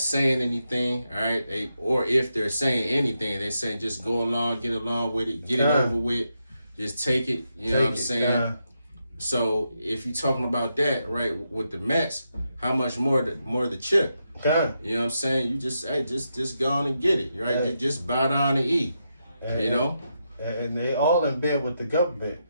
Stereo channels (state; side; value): inverted; both; correlation -0.84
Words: anything, all right? Or if they're saying anything, they saying just go along, get along with it, get it over with, just take it. You know what I'm saying? So if you're talking about that, right, with the Mets, how much more the chip? You know what I'm saying? You just go on and get it, right? Just bow down and eat, And they all in bed with the government.